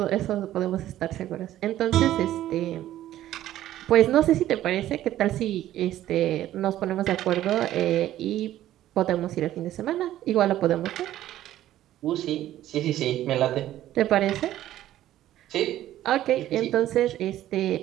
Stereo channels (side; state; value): left; quieter; 13.3 dB